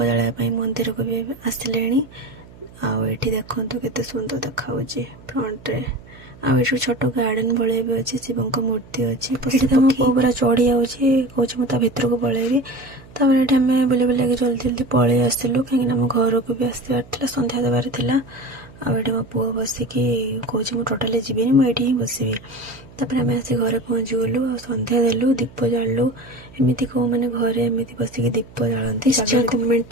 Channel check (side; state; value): right; noise; hum, 21 dB below the sound